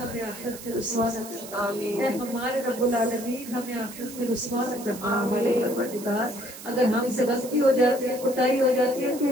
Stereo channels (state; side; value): noise; right; hiss, 14 dB below the sound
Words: ہمیں آخرت میں رسوا نہ کر۔ اے ہمارے رب العالمین، ہمیں آخرت میں رسوا نہ کرنا۔ ہمارے پروردگار، اگر ہم سے غلطی ہو جاتی ہے، کوتاہی ہو جاتی ہے،